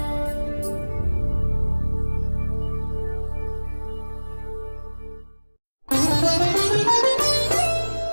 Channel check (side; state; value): both; inverted; correlation -1.00